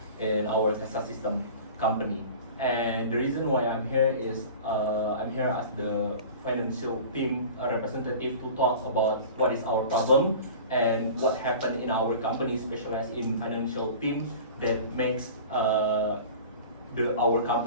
in our Casa System company. And the reason why I'm here is I'm here as the financial team representative to talk about what is our problem and what happened in our company specialized in financial team that makes our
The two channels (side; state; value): both; inverted; correlation -0.39